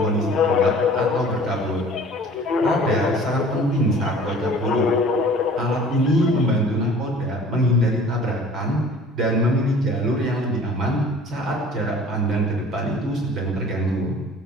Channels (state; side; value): normal; both; correlation 0.47